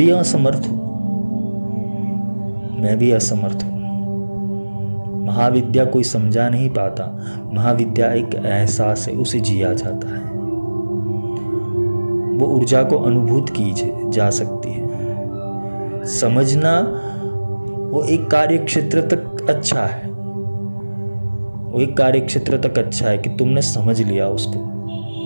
असमर्थ हूँ। महाविद्या कोई समझा नहीं पाता। महाविद्या एक एहसास है, उसे जिया जाता है। वो ऊर्जा को अनुभूत की जा सकती है। समझना वो एक कार्य क्षेत्र तक अच्छा है, कि तुमने समझ लिया उसको,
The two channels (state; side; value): inverted; both; correlation -1.00